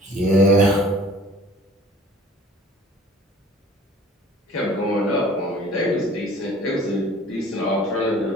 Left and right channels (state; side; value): normal; both; correlation 0.48